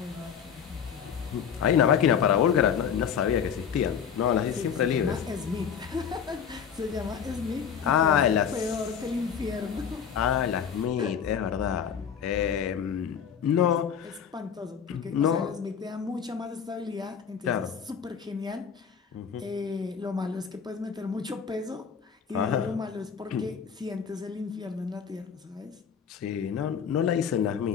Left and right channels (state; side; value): quieter; right; 7.6 dB